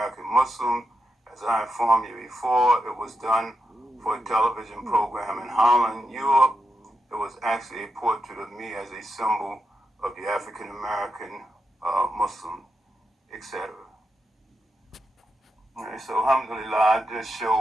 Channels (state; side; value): normal; both; correlation 0.86